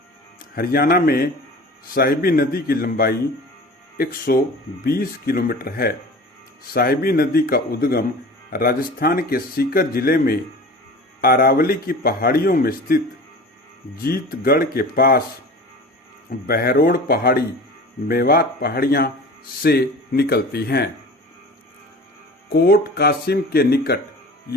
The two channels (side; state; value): both; normal; correlation 0.39